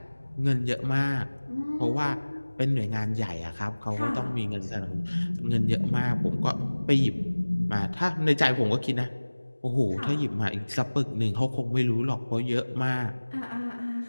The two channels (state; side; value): inverted; both; correlation -1.00